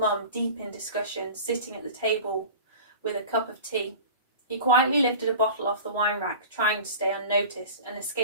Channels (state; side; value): inverted; both; correlation -0.37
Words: deep in discussion, sitting at the table with a cup of tea. He quietly lifted a bottle off the wine rack, trying to stay unnoticed, and